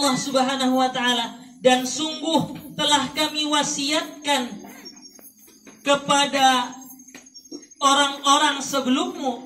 Subhanahu wa taala, dan sungguh telah kami wasiatkan kepada orang-orang sebelummu,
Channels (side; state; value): both; identical; correlation 1.00